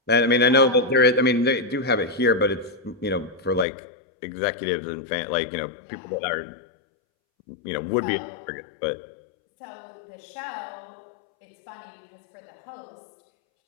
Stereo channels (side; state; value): right; drops out; at 3.7 s